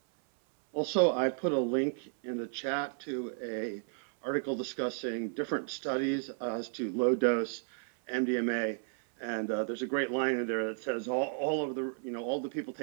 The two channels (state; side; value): silent; left; 56 dB below the other